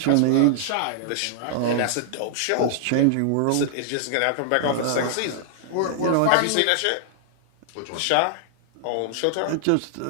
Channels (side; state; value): both; different; correlation -0.01